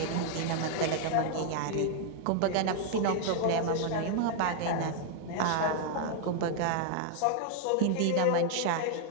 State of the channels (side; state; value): both; different; correlation 0.00